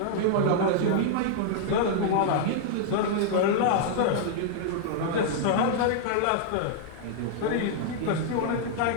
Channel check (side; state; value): both; different; correlation -0.01